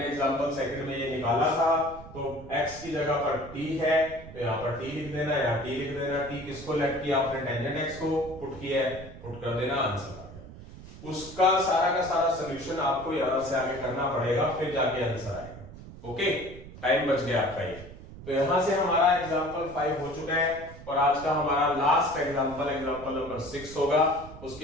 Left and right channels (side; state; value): right; noise; rumble, 16 dB below the sound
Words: एग्जांपल सेकंड में ये निकाला था, तो x की जगह पर t है तो यहाँ पर t लिख देना, यहाँ t लिख देना। t किसको लेट किया आपने, टेंजेंट x को पुट किया है, पुट कर देना, आंसर आ गया। उसका सारा का सारा सॉल्यूशन आपको यहां से आगे करना पड़ेगा, फिर जाके आंसर आएगा। ओके, टाइम बच गया आपका ये। तो यहां से हमारा एग्जांपल 5 हो चुका है और आज का हमारा लास्ट एग्जांपल नंबर 6 होगा।